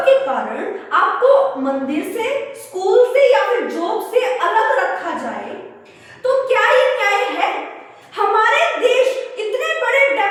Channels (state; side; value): identical; both; correlation 1.00